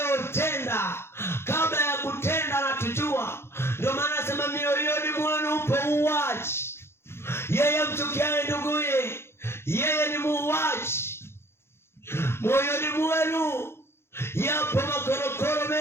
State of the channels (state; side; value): late; right; 0.12 ms